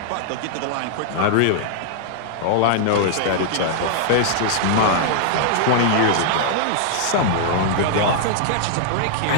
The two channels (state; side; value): different; both; correlation -0.01